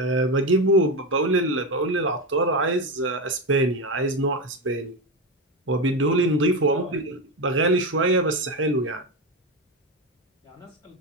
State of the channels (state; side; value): normal; both; correlation 0.14